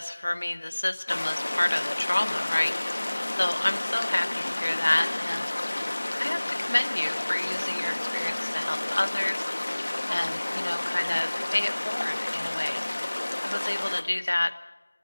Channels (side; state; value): both; inverted; correlation -1.00